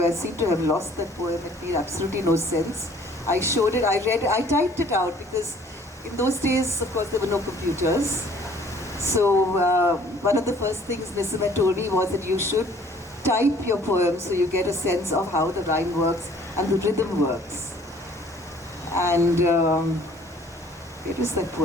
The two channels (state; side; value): normal; both; correlation 0.56